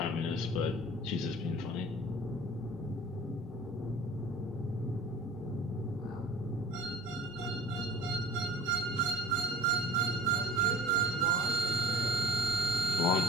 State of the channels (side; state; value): both; normal; correlation 0.41